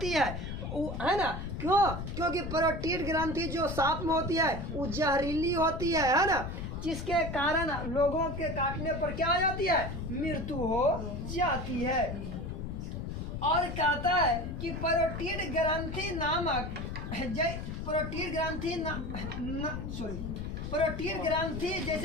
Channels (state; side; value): noise; left; rumble, 6 dB below the sound